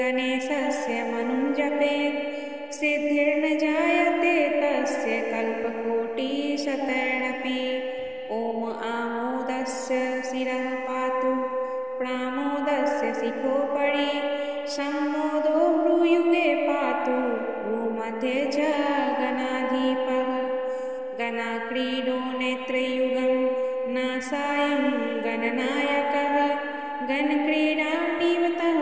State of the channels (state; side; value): identical; both; correlation 1.00